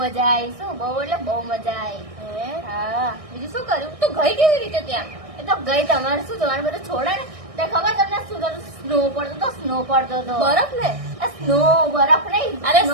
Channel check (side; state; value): left; late; 1.6 ms